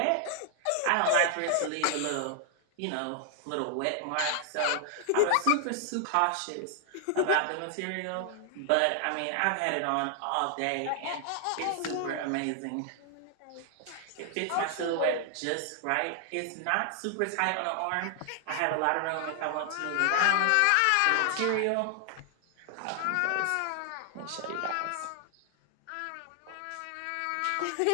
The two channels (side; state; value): both; different; correlation 0.00